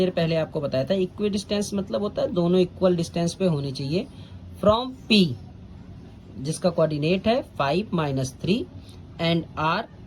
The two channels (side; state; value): both; identical; correlation 1.00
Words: पहले आपको बताया था इक्विडिस्टेंस मतलब होता है दोनों इक्वल डिस्टेंस पे होनी चाहिए, फ्रॉम P जिसका कोऑर्डिनेट है 5 माइनस 3 एंड R